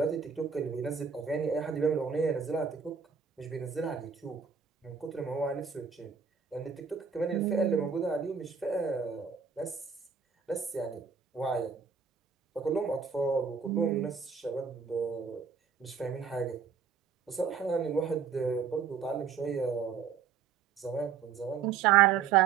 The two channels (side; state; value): left; quieter; 6.4 dB